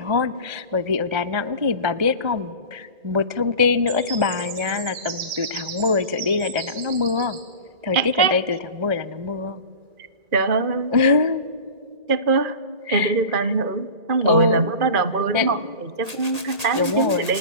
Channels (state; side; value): late; left; 1.8 ms